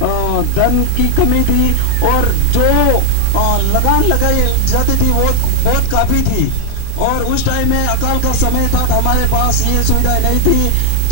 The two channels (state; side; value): different; both; correlation 0.00